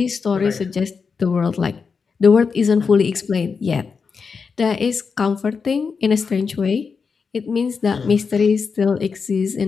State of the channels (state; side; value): quieter; right; 5.4 dB